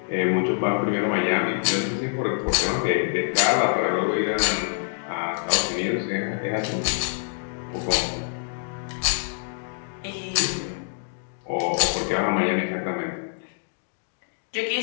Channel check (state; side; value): silent; right; digital silence